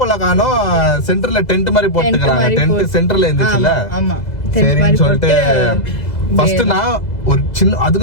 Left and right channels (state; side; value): late; right; 2.0 ms